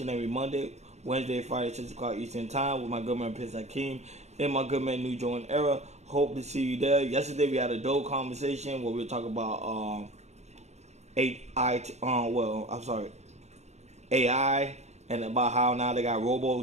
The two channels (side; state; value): left; late; 0.32 ms